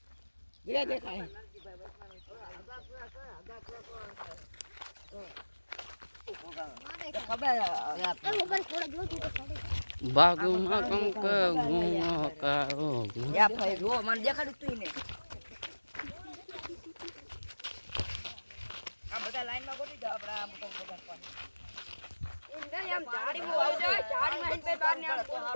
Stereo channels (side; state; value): both; inverted; correlation -1.00